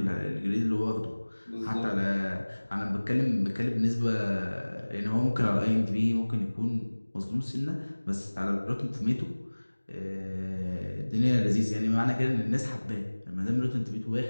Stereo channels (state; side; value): inverted; both; correlation -1.00